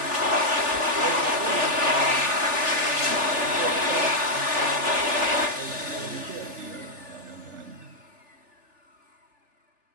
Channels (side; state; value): left; late; 3.4 ms